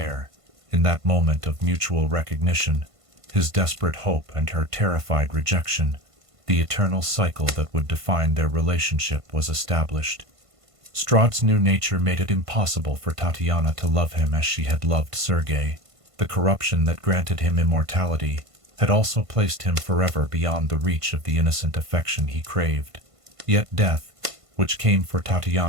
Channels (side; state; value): left; late; 1.5 ms